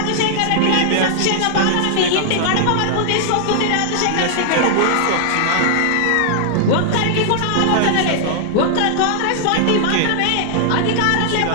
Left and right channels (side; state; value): both; different; correlation -0.01